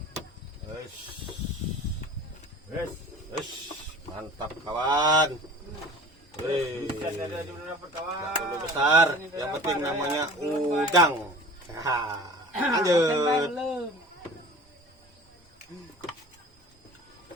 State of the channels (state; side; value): normal; both; correlation 0.41